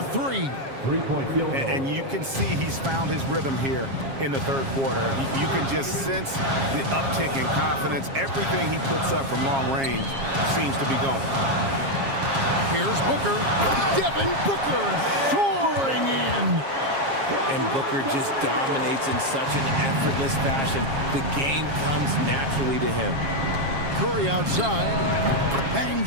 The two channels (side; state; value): left; late; 7.4 ms